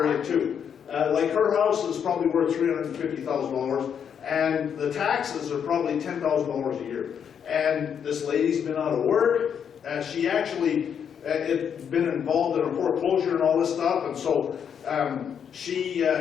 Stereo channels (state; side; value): quieter; right; 7.8 dB